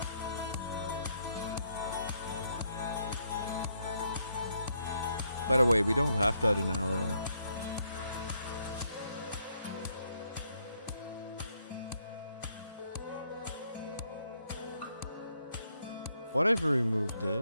By the way, we don't have that in our... What if we remove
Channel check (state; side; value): inverted; both; correlation -0.74